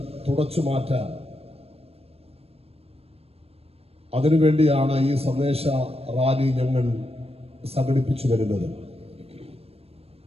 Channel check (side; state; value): left; late; 0.29 ms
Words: തുടച്ചു മാറ്റാൻ, അതിനുവേണ്ടിയാണ് ഈ സന്ദേശ റാലി ഞങ്ങൾ സംഘടിപ്പിച്ചു വരുന്നത്.